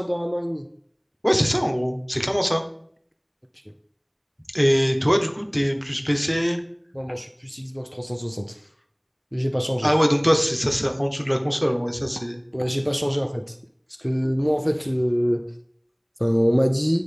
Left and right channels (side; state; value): both; identical; correlation 1.00